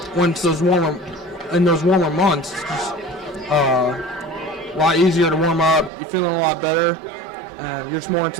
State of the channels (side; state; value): left; drops out; at 5.9 s